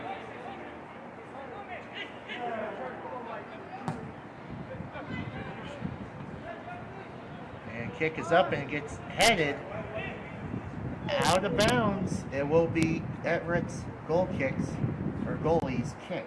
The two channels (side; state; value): both; identical; correlation 1.00